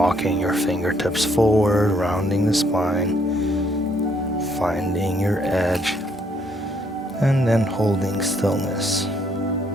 your fingertips forward, rounding the spine, finding your edge, and then holding stillness.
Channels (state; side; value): normal; both; correlation 0.69